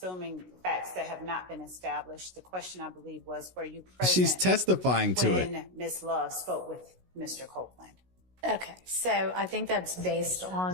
facts that have not been established. The question, I believe, was, were you present She's testifying to it. when Ms. Love spoke with Mr. Copeland? Okay, so I think that's based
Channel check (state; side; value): late; left; 16 ms